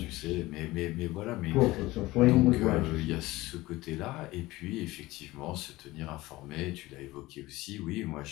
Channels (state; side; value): quieter; right; 19.1 dB